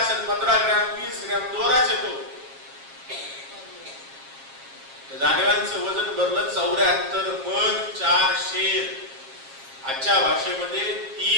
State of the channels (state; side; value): late; left; 7.4 ms